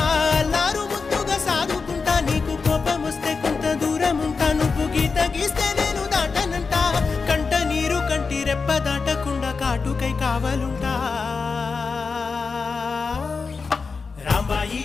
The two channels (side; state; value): right; quieter; 4.8 dB